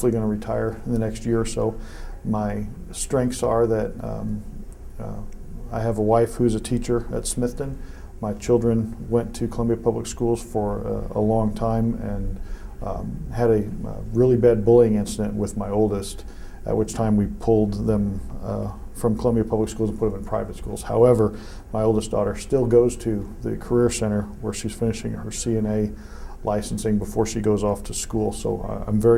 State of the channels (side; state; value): both; identical; correlation 1.00